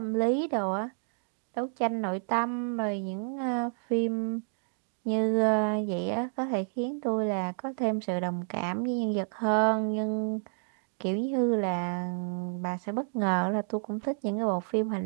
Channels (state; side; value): silent; left; digital silence